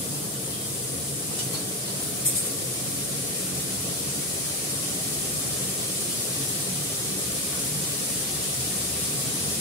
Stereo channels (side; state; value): both; normal; correlation 0.12